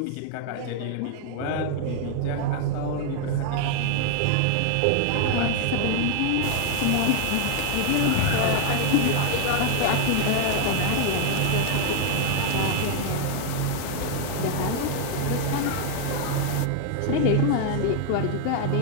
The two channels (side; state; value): both; different; correlation 0.00